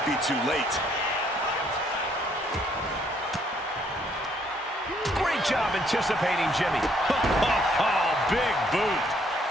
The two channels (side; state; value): both; normal; correlation 0.67